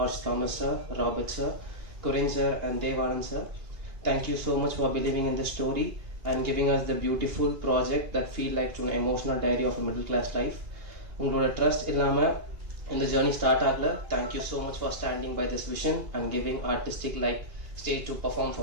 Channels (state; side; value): late; left; 2.8 ms